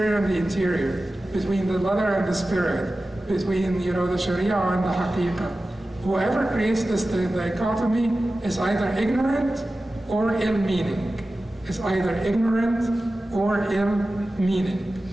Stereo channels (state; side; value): normal; both; correlation 0.95